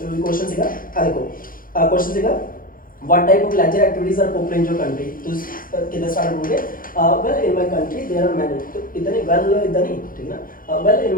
चलो क्वेश्चन सीगा देखो क्वेश्चन सीगा what type of leisure activities are popular in your country? तो किधर स्टार्ट करोगे? well in my country there are many तो इधर नहीं well इधर नहीं, ठीक है ना। well in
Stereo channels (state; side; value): late; right; 0.41 ms